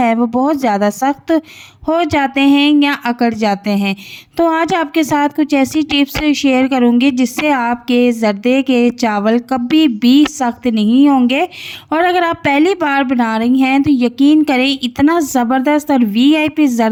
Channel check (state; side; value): identical; both; correlation 1.00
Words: वो बहुत ज़्यादा सख्त हो जाते हैं या अकड़ जाते हैं। तो आज आपके साथ कुछ ऐसी टिप्स शेयर करूंगी जिससे आपके ज़र्दे के चावल कभी भी सख्त नहीं होंगे। और अगर आप पहली बार बना रही हैं तो यकीन करें इतना ज़बरदस्त और वीआईपी